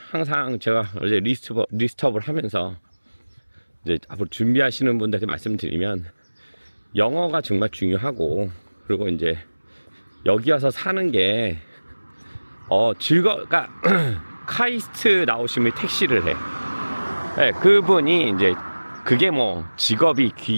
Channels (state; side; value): inverted; both; correlation -1.00